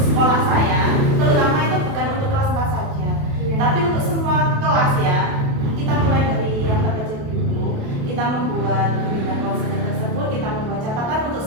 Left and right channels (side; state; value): left; late; 28 ms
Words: sekolah saya, terutama itu bukan untuk kelas 4 saja, tapi untuk semua kelas ya. Kita mulai dari yang terkecil dulu, kita membuat bimbingan konseling tersebut, kita membuat catatan untuk